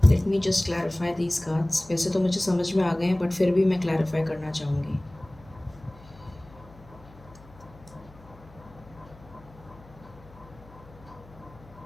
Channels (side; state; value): left; noise; hum, 22 dB below the sound